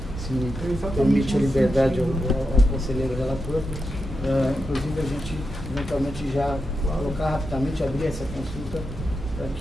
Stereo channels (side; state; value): both; normal; correlation 0.87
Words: se me permite a liberdade ao conselheiro relator, inclusive a gente eventualmente já colocar rapidamente, abrir essa consulta para